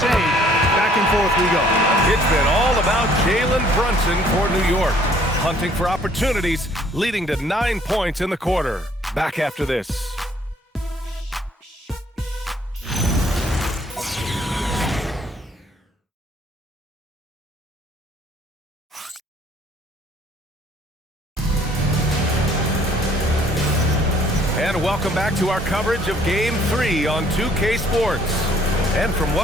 Back and forth we go. It's been all about Jalen Brunson for New York. Hunting for opportunities, leading to 9 points in the quarter. Back after this. And welcome back to our coverage of Game 3 on 2K Sports. And from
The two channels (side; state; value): both; normal; correlation 0.60